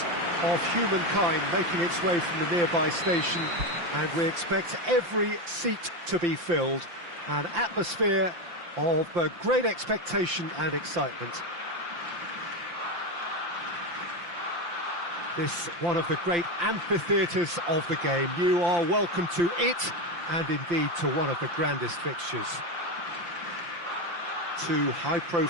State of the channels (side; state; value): left; late; 5.8 ms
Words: of humankind making its way from the nearby station, and we expect every seat to be filled. An atmosphere of great expectation and excitement. This one of the great amphitheatres of the game. You are welcome to it, and indeed to one of the grandest fixtures. Two